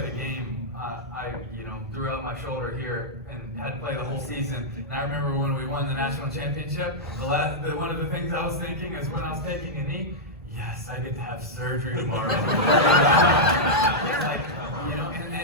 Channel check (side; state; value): both; normal; correlation -0.07